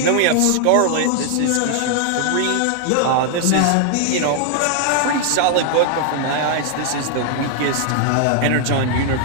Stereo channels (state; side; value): different; both; correlation 0.00